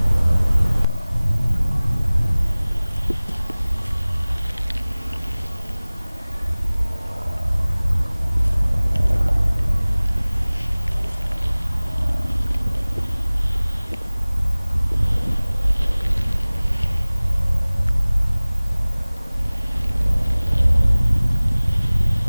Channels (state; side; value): inverted; both; correlation -1.00